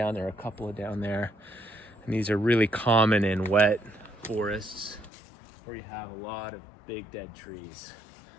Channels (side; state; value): right; drops out; at 5.1 s